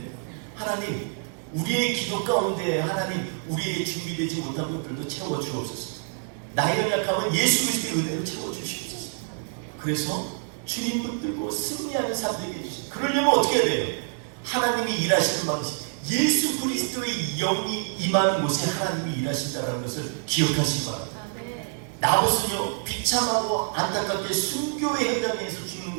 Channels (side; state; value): left; silent; 60 dB below the other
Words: 하나님, 우리의 기도 가운데 하나님, 우리에게 준비되지 못한 것들도 채워주옵소서. 나의 연약함은 예수 그리스도의 은혜로 채워주시옵소서. 그래서 주님 붙들고 승리하는 삶 되게 해주시옵소서. 그러려면 어떻게 해야 돼요? 하나님이 일하시는 방식, 예수 그리스도의 영이 임하는 곳에 하나님이 일하신다는 것을 기억하시기 바랍니다. 나봇은요, 비참하고 안타깝게 순교의 현장에서 죽는